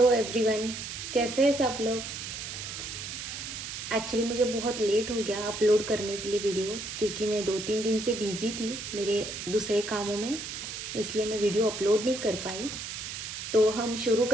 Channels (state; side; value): noise; right; hiss, 7 dB below the sound